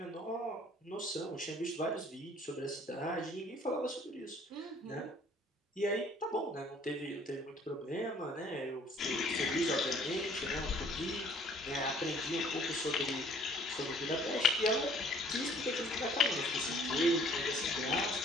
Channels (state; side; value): normal; both; correlation 0.56